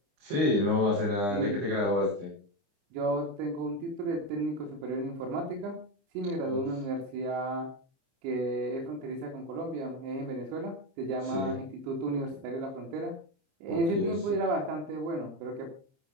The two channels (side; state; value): left; late; 30 ms